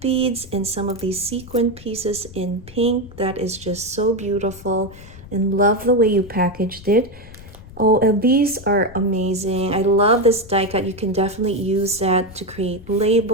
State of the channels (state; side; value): noise; left; rumble, 18 dB below the sound